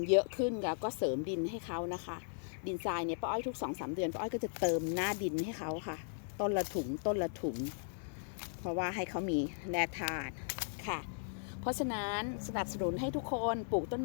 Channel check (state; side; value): silent; right; digital silence